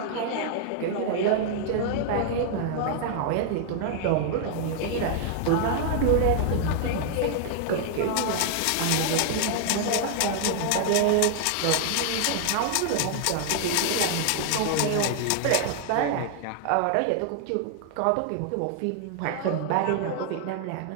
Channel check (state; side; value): different; both; correlation 0.00